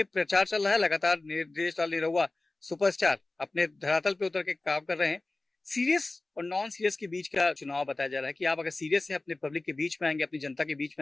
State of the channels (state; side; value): quieter; right; 3.1 dB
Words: प्रचार चल रहा है लगातार। देश लाल निरहुआ सुपरस्टार अपने धरातल पे उतर के काम कर रहे हैं। सीरियस और नॉन सीरियस के बीच का चुनाव बताया जा रहा है कि आप अगर सीरियस है, अपने पब्लिक के बीच में आएंगे, अपनी जनता के बीच